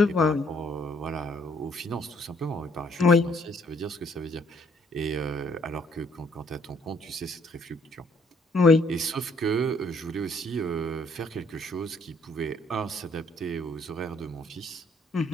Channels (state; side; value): normal; both; correlation 0.65